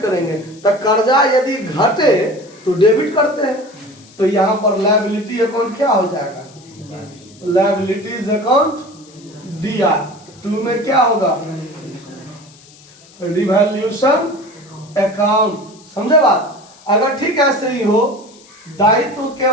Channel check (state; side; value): noise; left; hiss, 25 dB below the sound